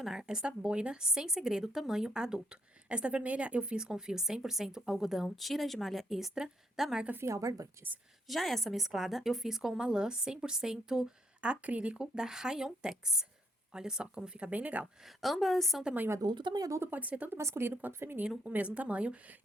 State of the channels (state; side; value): normal; both; correlation 0.73